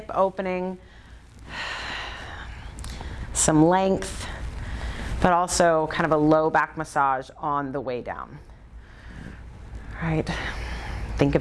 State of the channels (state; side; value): identical; both; correlation 1.00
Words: opening, some length, but also kind of a low back massage on the way down. All right. Think